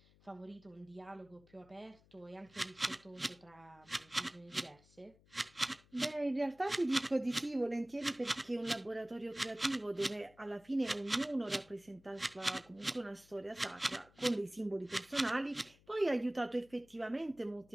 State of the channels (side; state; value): left; noise; hum, 28 dB below the sound